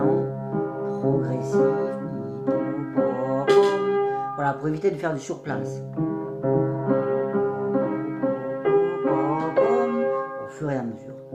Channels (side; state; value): both; identical; correlation 1.00